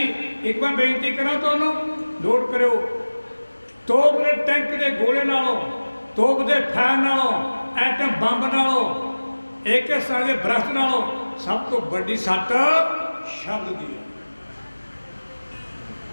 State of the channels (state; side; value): inverted; both; correlation -1.00